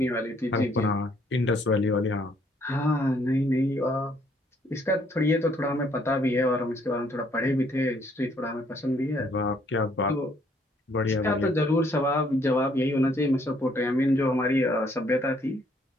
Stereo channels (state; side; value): normal; both; correlation 0.66